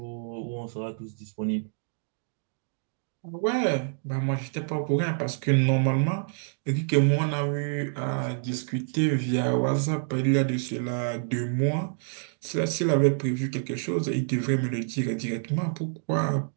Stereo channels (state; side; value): silent; left; digital silence